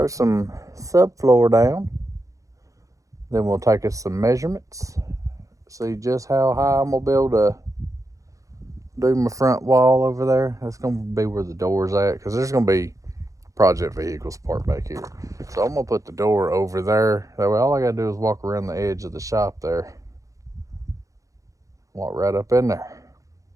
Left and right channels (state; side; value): late; left; 0.16 ms